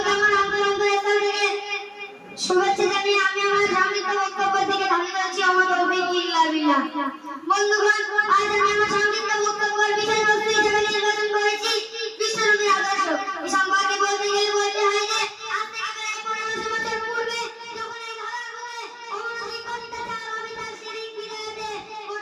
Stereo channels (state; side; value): identical; both; correlation 1.00